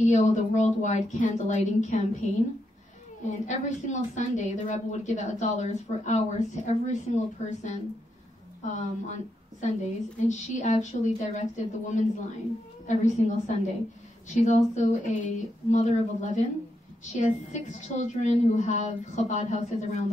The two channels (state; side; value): normal; both; correlation 0.82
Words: of the Worldwide Candlelighting Campaign. And every single Sunday, the Rebbe would give out dollars for hours to every single person on Sundays. And she actually directed the Women's Line every single Sunday. She's also a mother of 11. She has 6 children who have Chabad houses around